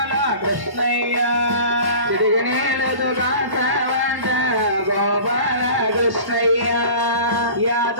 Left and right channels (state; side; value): late; left; 1.1 ms